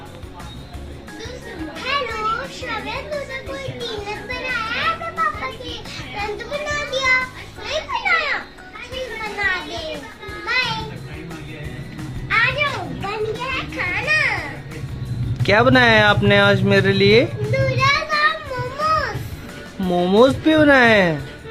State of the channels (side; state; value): both; identical; correlation 1.00